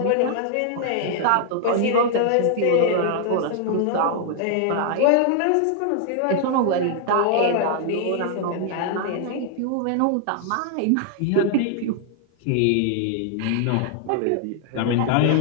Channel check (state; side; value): different; both; correlation 0.00